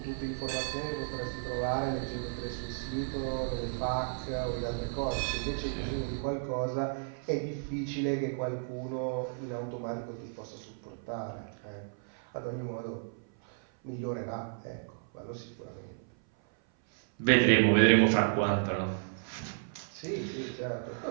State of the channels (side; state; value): left; silent; 56 dB below the other